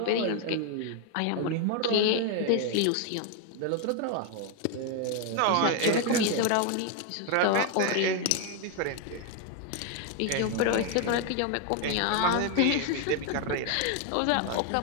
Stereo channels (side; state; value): both; different; correlation 0.01